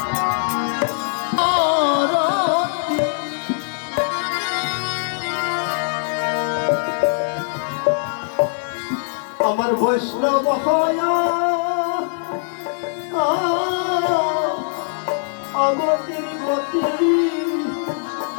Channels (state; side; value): silent; right; digital silence